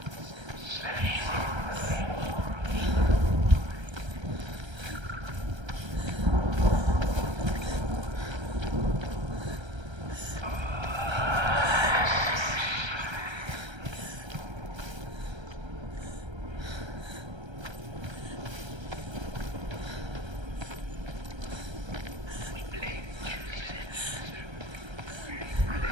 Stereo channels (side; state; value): left; late; 1.3 ms